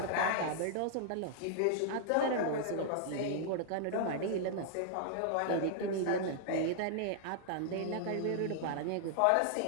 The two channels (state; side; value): different; both; correlation -0.01